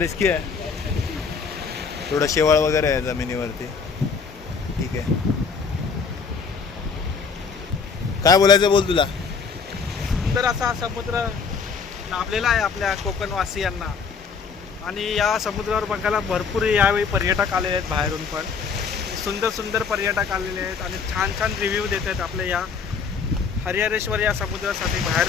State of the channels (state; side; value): quieter; right; 5.6 dB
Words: आहे, थोडा शेवाळ वगैरे आहे जमिनीवरती. ठीक आहे, काय बोलायचं बोल तुला. सुंदर असा समुद्र लाभलेला आहे आपल्या कोकणवासियांना आणि या समुद्रावर बघायला भरपूर यावेळी पर्यटक आलेले आहेत, बाहेरून पण सुंदर सुंदर पर्यटक आलेले आहेत आणि छान छान रिव्ह्यू देत आहेत आपल्या या हरिहरेश्वर या समुद्रासाठी.